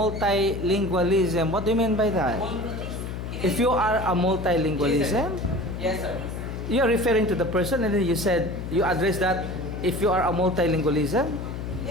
what do you mean by that? If you are a multilingualism, yes, sir. you're referring to the person, and then you said, you address that if you are a multilingualism?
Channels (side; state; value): left; noise; hum, 6 dB below the sound